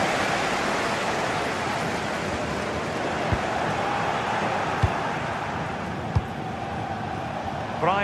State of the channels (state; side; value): identical; both; correlation 1.00